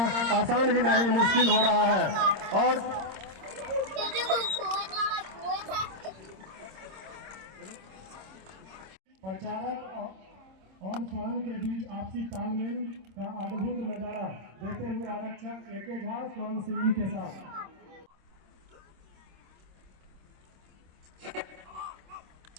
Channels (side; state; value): left; late; 26 ms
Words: आसान ही नहीं, मुश्किल हो रहा है। और प्रचारक और स्वान के बीच आपसी तालमेल का अद्भुत नजारा देते हुए आरक्षक एके झा स्वान सिंह के साथ